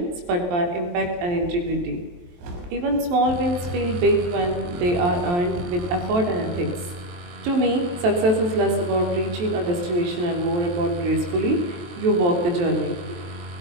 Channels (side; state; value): left; late; 23 ms